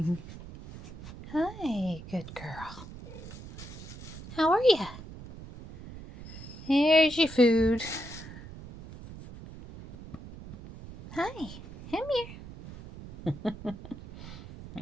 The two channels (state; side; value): noise; right; rumble, 14 dB below the sound